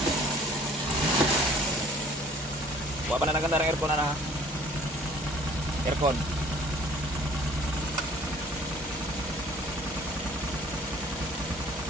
Kawa pa na naganda ng aircon na aircon.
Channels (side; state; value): both; normal; correlation 0.53